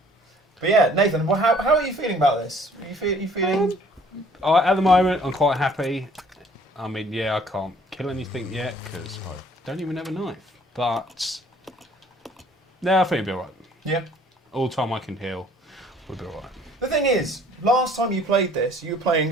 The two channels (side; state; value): both; normal; correlation 0.56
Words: But yeah, Nathan, well, how are you feeling about this? Are you feeling? At the moment, I'm quite happy. I mean, yeah, I can't kill anything yet because I don't even have a knife. But no, I think it'll be alright. Yeah. All the time I can heal, we'll be alright. The thing is, last time you played this, you were